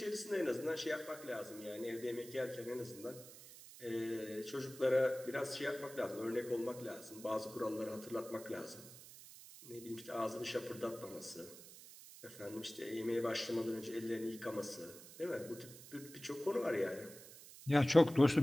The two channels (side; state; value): right; noise; hiss, 16 dB below the sound